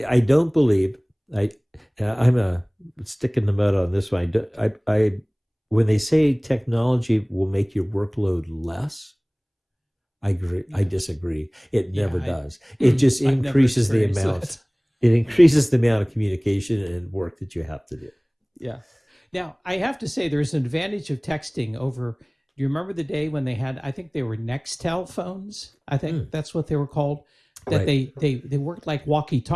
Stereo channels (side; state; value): both; identical; correlation 1.00